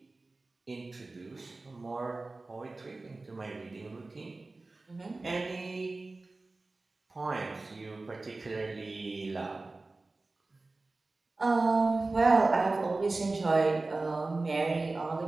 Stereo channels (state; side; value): quieter; left; 3.3 dB